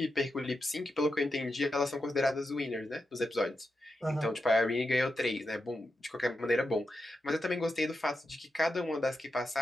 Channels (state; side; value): normal; both; correlation 0.88